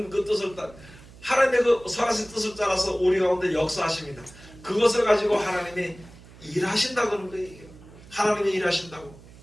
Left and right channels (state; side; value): noise; right; hum, 21 dB below the sound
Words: 그 뜻을 하나님의 그 선하신 뜻을 따라서 우리 가운데 역사하십니다. 그것을 가지고 하나님이 일하신다는 거예요. 하나님이 일하신다고.